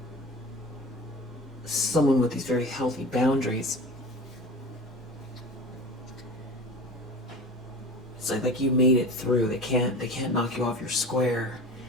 someone with these very healthy boundaries. It's like you made it through. They can't knock you off your square,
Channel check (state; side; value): normal; both; correlation 0.36